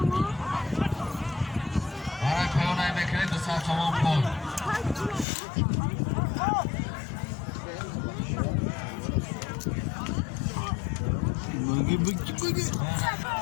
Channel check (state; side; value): drops out; right; at 5.2 s